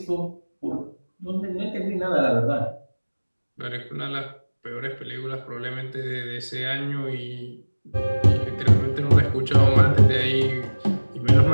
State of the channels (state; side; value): inverted; both; correlation -1.00